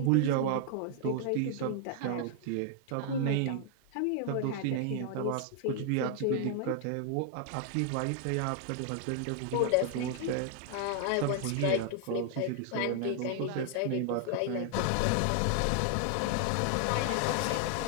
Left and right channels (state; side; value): different; both; correlation 0.00